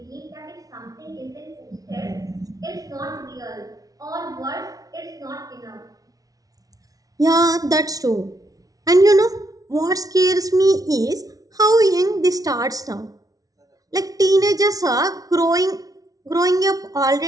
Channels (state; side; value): late; left; 0.18 ms